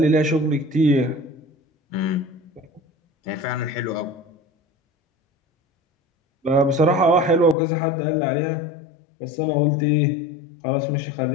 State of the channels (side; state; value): right; drops out; at 7.6 s